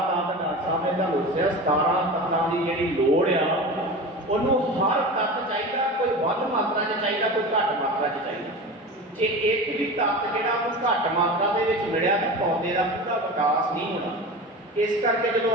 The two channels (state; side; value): normal; both; correlation 0.30